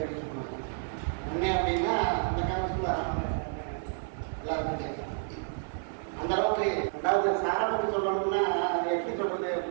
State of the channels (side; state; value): left; silent; 58 dB below the other